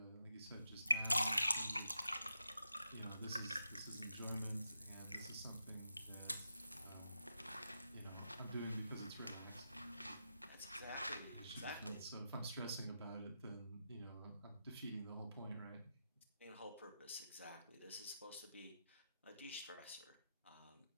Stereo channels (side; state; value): both; inverted; correlation -0.86